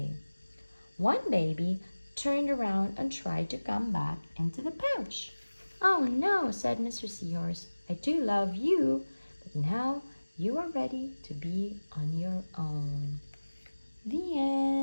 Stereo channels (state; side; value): inverted; both; correlation -1.00